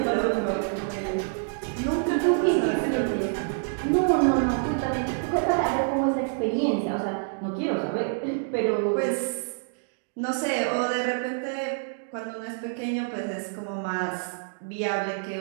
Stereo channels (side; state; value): left; silent; digital silence